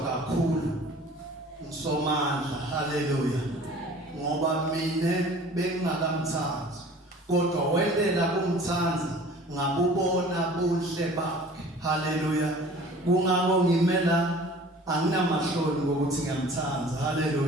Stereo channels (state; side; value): normal; both; correlation 0.47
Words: ngusomandla. Haleluya. Ngoba mina bengingakamthanzi, kodwa wendela kumthanza ngabubona buhle bakhe. Haleluya. Kungako ngimela anginamahloni ngokuthi ngiyamthanza.